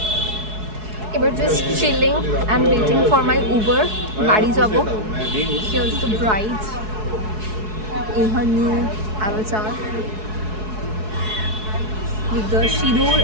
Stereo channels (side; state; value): left; late; 4.7 ms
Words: এবার just chilling and waiting for my Uber, বাড়ি যাব। Here's the bride in her new avatar with the সিঁদুর